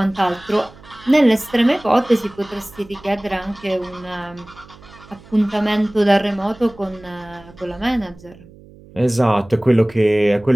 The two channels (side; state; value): right; noise; hum, 23 dB below the sound